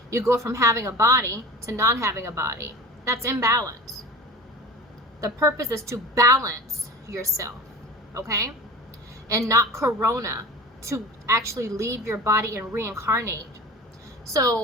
You go from having a body to not having a body. That's imbalance. The purpose is to balance yourself, okay? And not corona to actually leave your body and reincarnate.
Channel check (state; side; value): normal; both; correlation 0.36